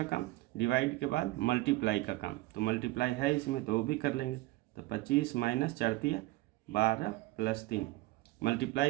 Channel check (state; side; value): quieter; left; 18.9 dB